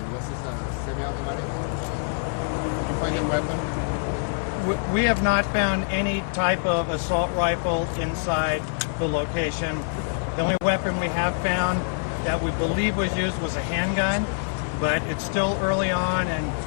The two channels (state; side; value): silent; right; 62 dB below the other